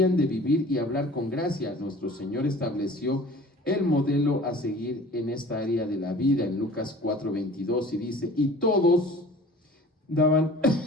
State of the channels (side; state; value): both; normal; correlation 0.45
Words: de vivir y hablar con gracia. Nuestro Señor estableció el modelo a seguir en esta área de la vida en Lucas 4:22, y dice: y todos daban